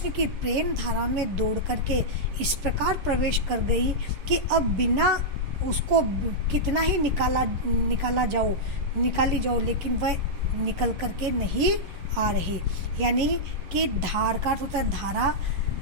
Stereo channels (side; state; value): left; late; 11 ms